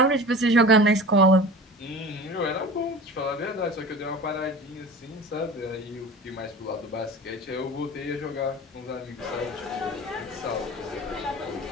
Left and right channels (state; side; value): normal; both; correlation 0.36